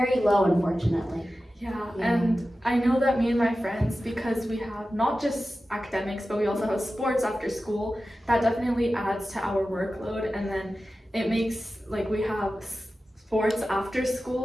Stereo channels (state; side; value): normal; both; correlation 0.94